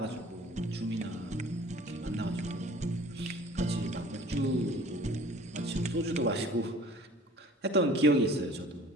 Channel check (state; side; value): normal; both; correlation 0.49